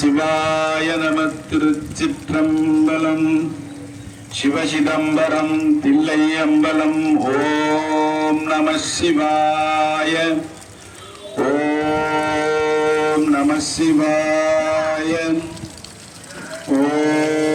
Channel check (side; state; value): both; identical; correlation 1.00